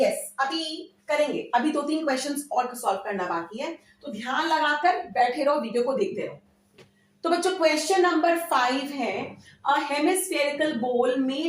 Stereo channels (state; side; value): identical; both; correlation 1.00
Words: अभी करेंगे, अभी 2-3 क्वेश्चंस और सॉल्व करना बाकी है, तो ध्यान लगाकर बैठे रहो, वीडियो को देखते रहो। तो बच्चों क्वेश्चन नंबर 5 है, a hemispherical bowl